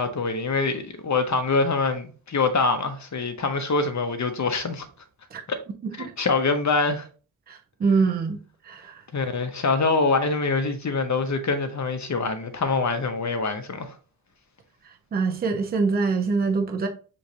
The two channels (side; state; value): both; normal; correlation 0.09